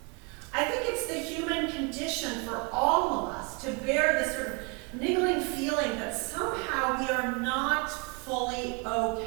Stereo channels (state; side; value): quieter; left; 31.9 dB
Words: I think it's the human condition for all of us to bear this sort of niggling feeling that somehow we are not fully